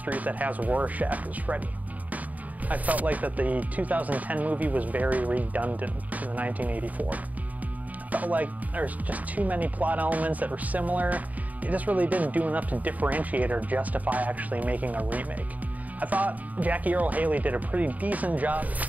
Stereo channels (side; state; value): left; late; 0.074 ms